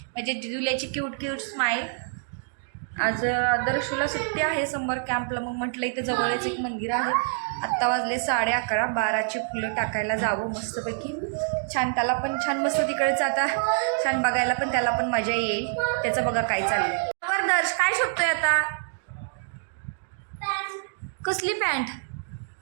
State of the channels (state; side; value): silent; left; digital silence